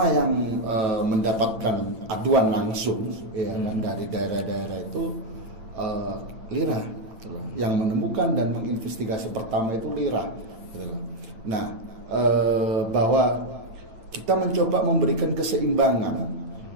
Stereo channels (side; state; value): left; late; 8.9 ms